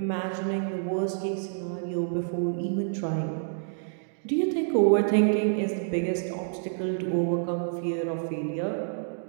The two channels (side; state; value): left; silent; digital silence